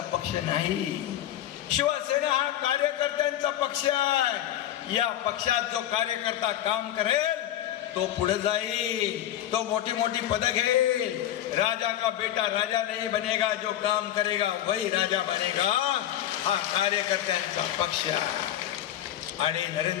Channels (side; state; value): right; quieter; 12.1 dB